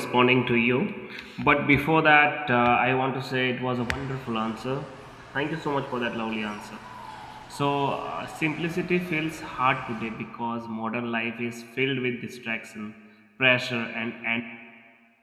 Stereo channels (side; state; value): both; identical; correlation 1.00